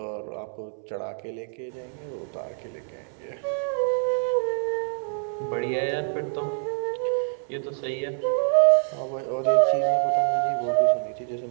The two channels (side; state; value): left; silent; 61 dB below the other